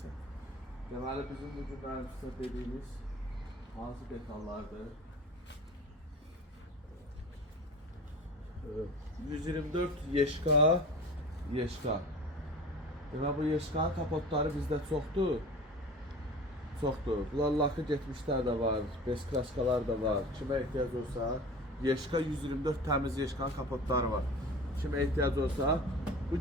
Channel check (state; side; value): normal; both; correlation 0.37